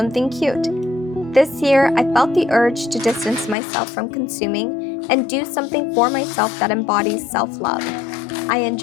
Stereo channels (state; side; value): drops out; right; at 3.6 s